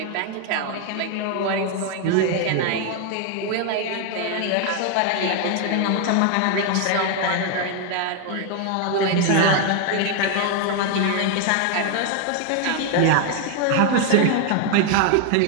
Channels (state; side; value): different; both; correlation 0.00